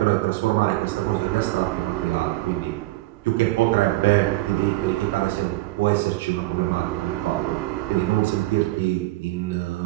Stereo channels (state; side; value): quieter; left; 18.9 dB